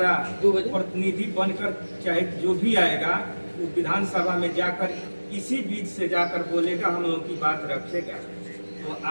प्रतिनिधि बनकर चाहे जो भी आएगा वो विधानसभा में जाकर इसी बीच से जाकर बोलेगा, हम लोगों की बात रखेगा। तो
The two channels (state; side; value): inverted; both; correlation -1.00